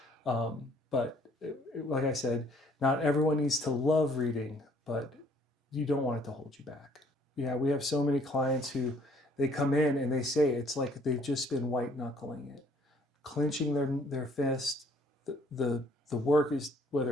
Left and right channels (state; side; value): normal; both; correlation 0.61